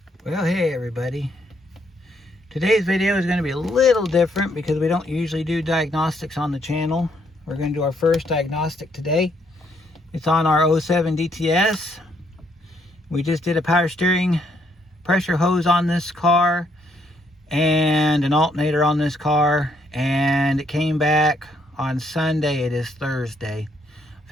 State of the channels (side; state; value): both; normal; correlation 0.72